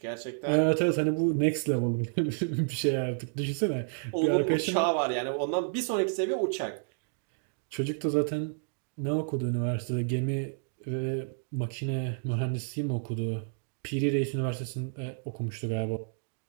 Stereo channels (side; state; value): left; silent; digital silence